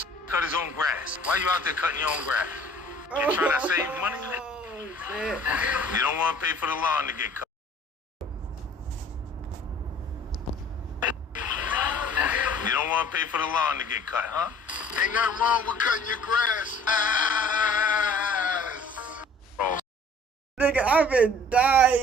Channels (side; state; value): both; normal; correlation 0.51